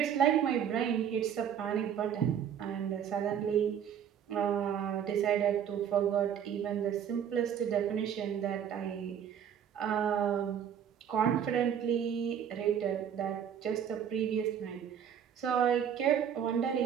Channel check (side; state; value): left; quieter; 8.7 dB